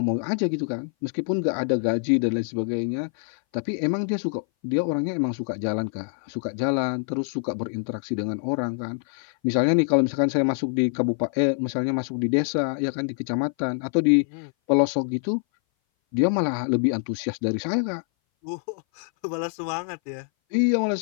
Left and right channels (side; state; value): right; silent; 59 dB below the other